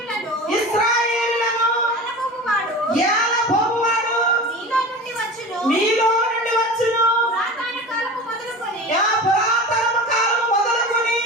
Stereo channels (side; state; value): both; normal; correlation 0.33